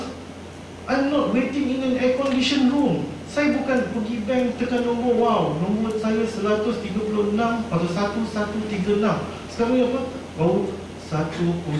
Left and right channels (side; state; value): both; identical; correlation 1.00